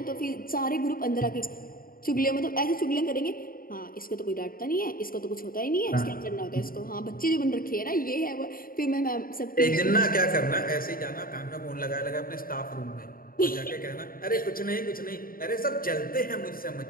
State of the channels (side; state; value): right; late; 0.42 ms